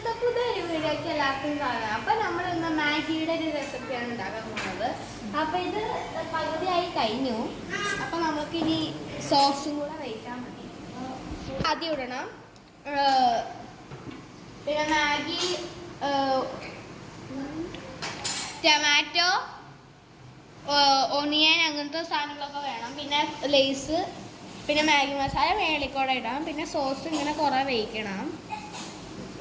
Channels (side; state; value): both; identical; correlation 1.00